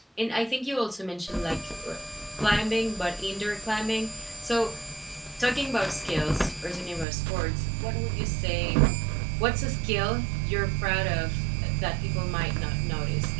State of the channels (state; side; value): drops out; left; at 7.1 s